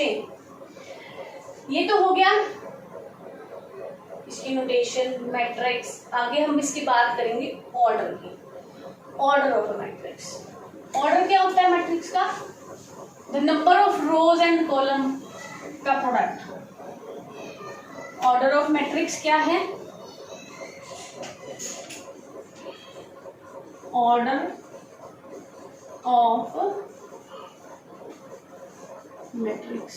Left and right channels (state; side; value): identical; both; correlation 1.00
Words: ये तो हो गया इसकी नोटेशन, मैट्रिक्स। आगे हम इसकी बात करेंगे ऑर्डर की, order of a matrix. Order क्या होता है मैट्रिक्स का, the number of rows and column का प्रोडक्ट। ऑर्डर ऑफ मैट्रिक्स क्या है, order of matrix.